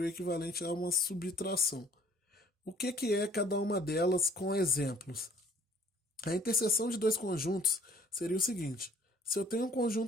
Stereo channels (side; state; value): both; normal; correlation 0.57